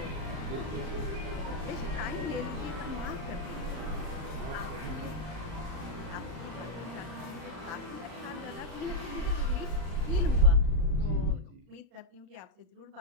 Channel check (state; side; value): late; left; 39 ms